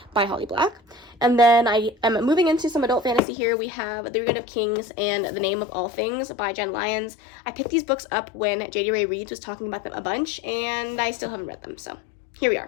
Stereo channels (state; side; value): drops out; right; at 3.2 s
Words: by Holly Black. And then I am moving into some adult fantasy here. We have The Reign of Kings and The Name of All Things by Jen Lyons. I picked these books up when J.D. Ray Reeves was talking about them a bunch, and I still haven't read them, so here we